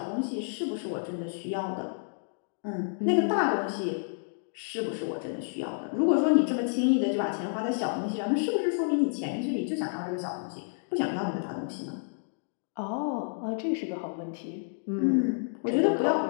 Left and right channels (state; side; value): silent; right; digital silence